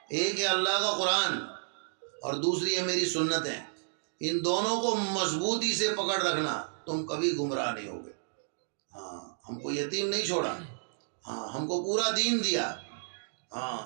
ایک ہے اللہ کا قرآن اور دوسری ہے میری سنتیں. ان دونوں کو مضبوطی سے پکڑ رکھنا، تم کبھی گمراہ نہیں ہوگے. ہم کو یتیم نہیں چھوڑا، ہم کو پورا دین دیا.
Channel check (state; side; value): silent; left; digital silence